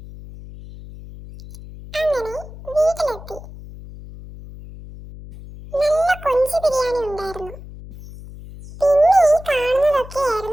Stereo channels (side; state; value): left; noise; hum, 15 dB below the sound